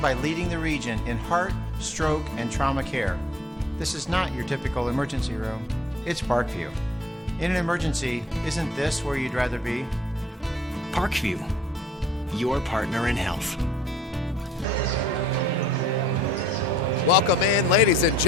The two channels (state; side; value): normal; both; correlation 0.59